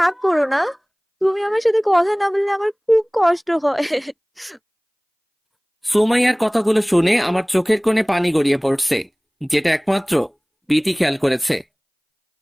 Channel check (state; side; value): identical; both; correlation 1.00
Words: করো না। তুমি আমার সাথে কথা না বললে আমার খুব কষ্ট হয়। সুমাইয়ার কথাগুলো শুনে আমার চোখের কোণে পানি গড়িয়ে পড়ছে, যেটা একমাত্র বিথি খেয়াল করেছে।